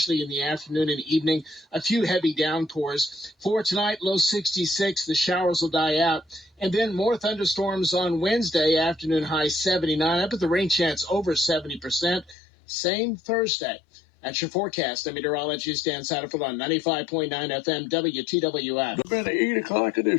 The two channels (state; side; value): drops out; right; at 12.4 s